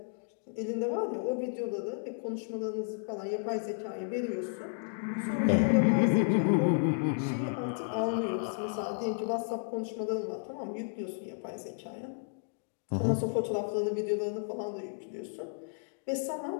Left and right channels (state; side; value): silent; right; digital silence